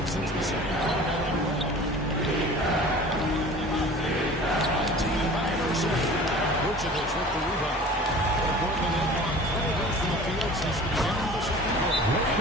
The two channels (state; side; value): normal; both; correlation 0.42